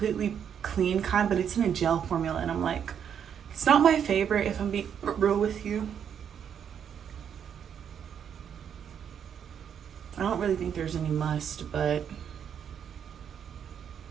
clean kind, but it's in a gel formula, and I'm like, it's not my favorite, if I'm being real with you. I don't really think there's any must, but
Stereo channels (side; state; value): left; quieter; 8.3 dB